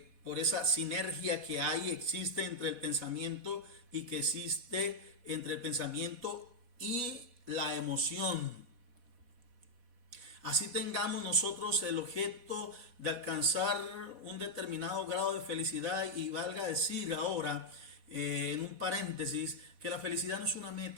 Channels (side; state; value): left; late; 4.1 ms